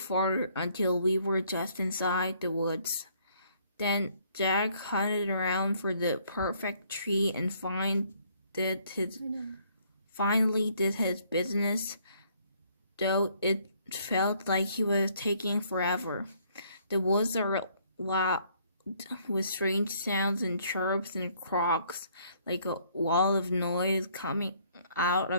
until we were just inside the woods. Then Jack hunted around for the perfect tree and finally did his business, though it felt like he was taking forever. The woods are loud with strange sounds and chirps and croaks, like a wall of noise coming out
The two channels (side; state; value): both; inverted; correlation -0.65